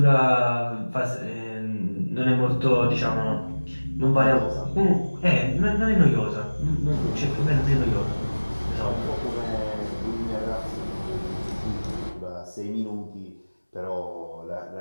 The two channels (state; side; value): inverted; both; correlation -1.00